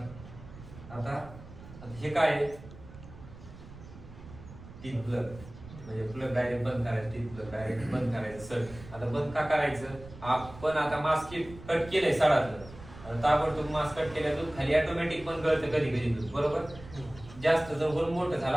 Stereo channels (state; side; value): noise; right; rumble, 17 dB below the sound